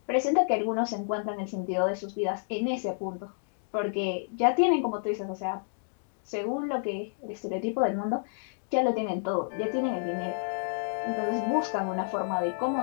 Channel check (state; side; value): silent; right; digital silence